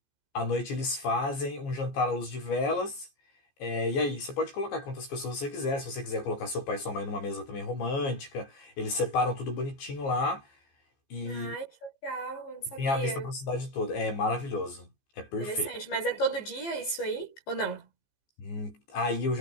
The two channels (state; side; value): late; right; 15 ms